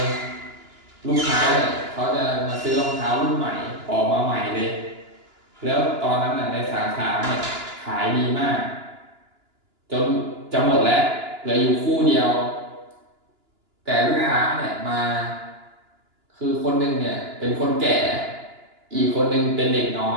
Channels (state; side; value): late; left; 2.9 ms